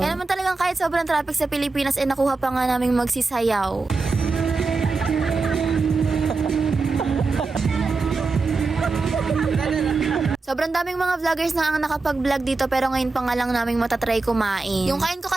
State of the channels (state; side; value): quieter; left; 3.9 dB